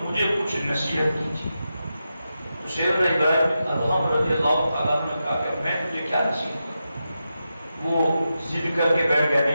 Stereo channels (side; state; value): both; inverted; correlation -0.89